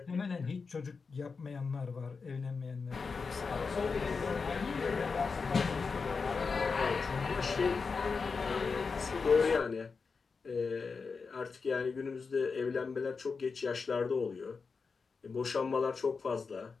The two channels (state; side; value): quieter; right; 4.9 dB